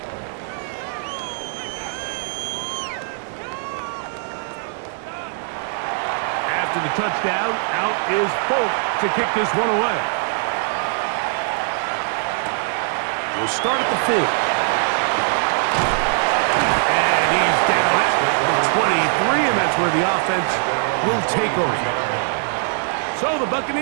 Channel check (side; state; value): left; silent; 65 dB below the other